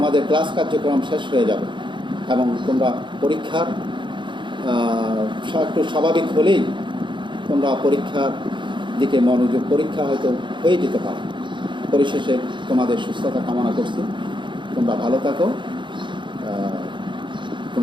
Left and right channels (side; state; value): left; late; 0.23 ms